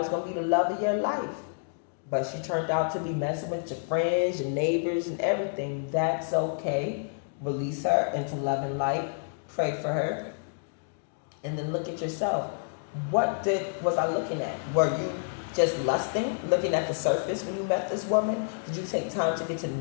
going to be the love of your life, but she turned out to be messing with your friends, your neighbors, and everything. That's okay. Release her into love and light. Pray for her. And then look at yourself. What was I looking at? Were you just lusting, looking at the surface when you met this woman? Did you take time to get to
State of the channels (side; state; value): right; silent; digital silence